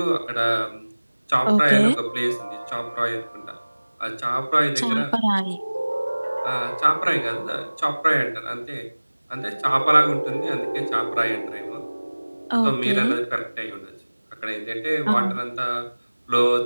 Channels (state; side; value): inverted; both; correlation -1.00